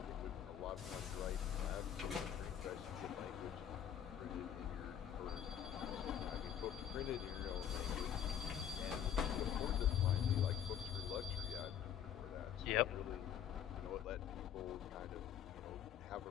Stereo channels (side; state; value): right; quieter; 9.5 dB